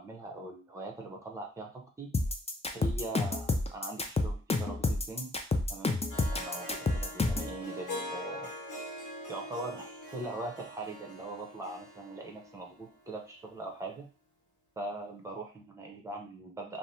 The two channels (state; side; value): normal; both; correlation 0.63